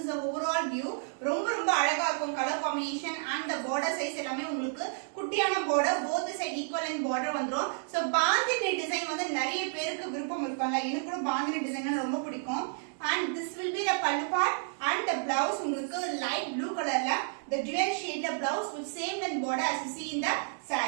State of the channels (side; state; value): left; silent; 57 dB below the other